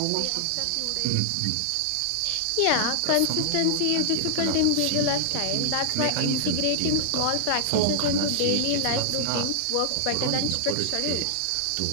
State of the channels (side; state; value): both; different; correlation -0.01